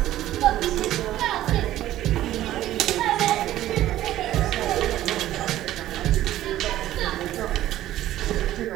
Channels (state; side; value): quieter; left; 13.8 dB